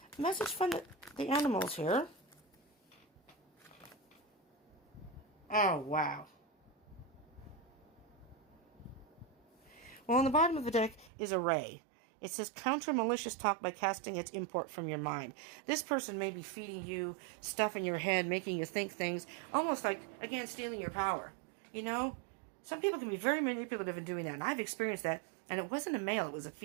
a message from the animals here. Oh, wow. Well, on the bottom of the deck is a ray. It says, counter malicious talk by casting its import from your mind. This person may be feeding you stuff in your head, making you think things, almost like, again, stealing your power. You know? Some people can be very manipulative in doing that, and I've experienced that, and it wasn't a male, it was a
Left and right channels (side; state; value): left; drops out; at 11.1 s